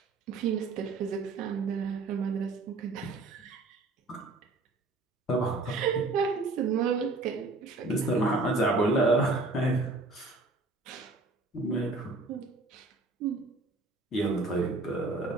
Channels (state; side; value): quieter; left; 3.3 dB